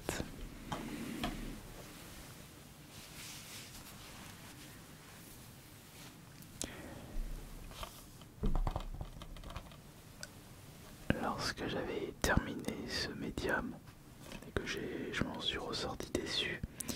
Lorsque j'avais terminé ce médium et que je m'en suis ressorti déçu,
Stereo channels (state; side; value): identical; both; correlation 1.00